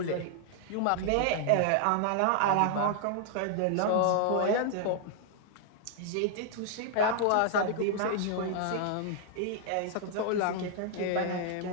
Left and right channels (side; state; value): both; different; correlation -0.01